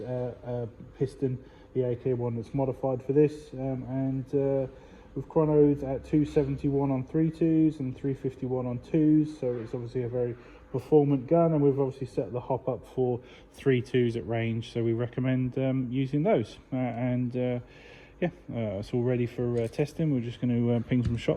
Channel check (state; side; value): identical; both; correlation 1.00